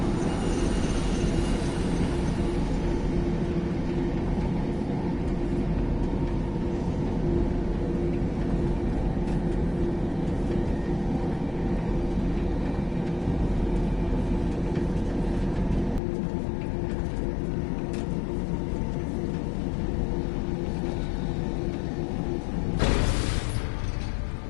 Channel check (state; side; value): drops out; right; at 16.0 s